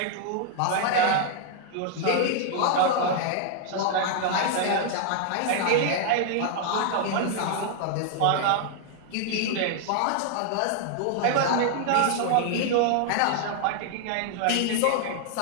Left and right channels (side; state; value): both; different; correlation 0.00